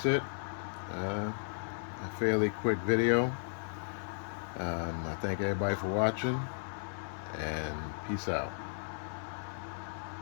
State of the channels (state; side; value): silent; right; 54 dB below the other